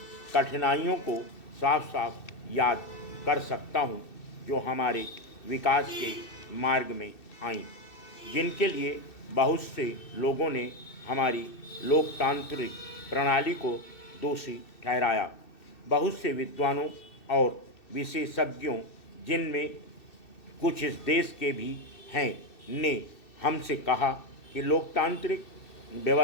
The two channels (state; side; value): late; right; 2.6 ms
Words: कठिनाइयों को साफ साफ याद कर सकता हूँ जो हमारे विकास के मार्ग में आईं, जिनके लिए बहुत से लोगों ने हमारी लोकतांत्रिक प्रणाली को दोषी ठहराया। बहुत से विद्वानों और विशेषज्ञों, जिनमें कुछ इस देश के भी हैं, ने हमसे कहा कि लोकतांत्रिक